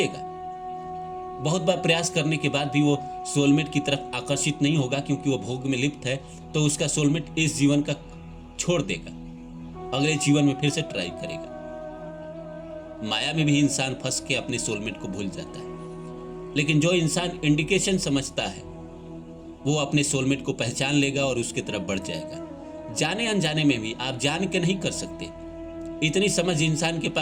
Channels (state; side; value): identical; both; correlation 1.00